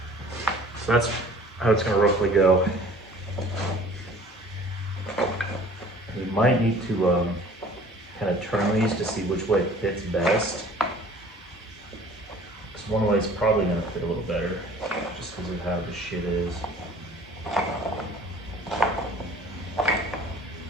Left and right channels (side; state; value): both; normal; correlation 0.49